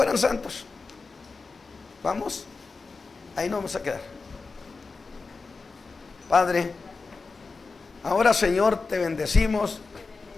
santos. Vamos, ahí nos vamos a quedar. Padre, ahora, Señor, te bendecimos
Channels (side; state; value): right; quieter; 4.2 dB